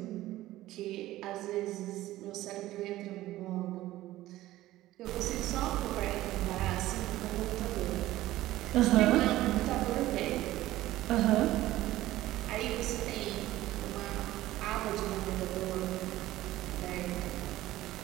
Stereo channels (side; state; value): left; quieter; 15.8 dB